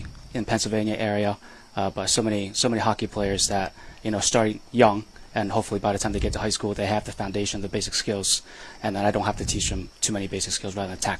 in Pennsylvania area, but so many hockey players that, starting young, and hopefully by the time they get to high school, they have the foundation, the basic skills, and then I don't have to teach them too many basic skills rather than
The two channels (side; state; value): both; identical; correlation 1.00